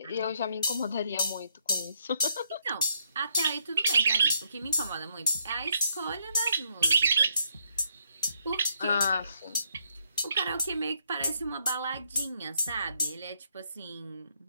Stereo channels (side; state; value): both; inverted; correlation -0.75